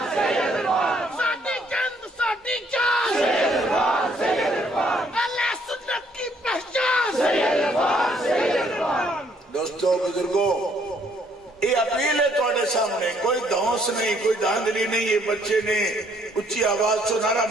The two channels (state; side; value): normal; both; correlation 0.66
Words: ساٹی چند ساٹی چاند سید الفان اللہ سنت کی پہچان سید الفان. دوستو بزرگو یہ اپیل ہے توڑے سامنے کوئی دھونس نہیں کوئی دھاندلی نہیں. یہ بچے نے اچھی آواز سے نعرہ